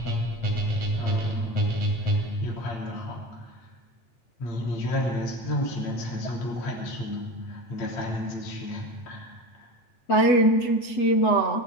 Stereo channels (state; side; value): late; right; 8.0 ms